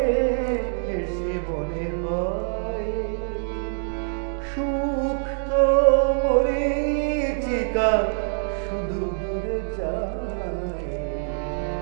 এসে মনে হয়, সুখ তো মরীচিকা শুধু দূরে যায়।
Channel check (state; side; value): silent; left; digital silence